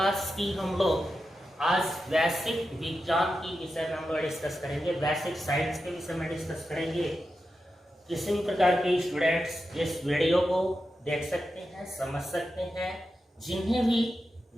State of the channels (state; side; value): normal; both; correlation 0.90